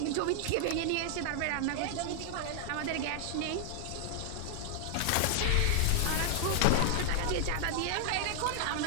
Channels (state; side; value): different; both; correlation 0.00